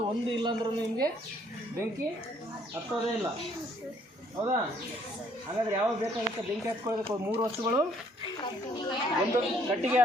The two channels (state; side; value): normal; both; correlation 0.64